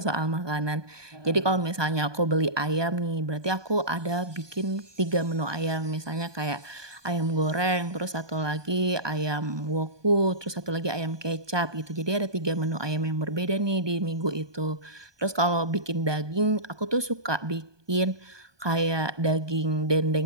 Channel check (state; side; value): late; left; 1.2 ms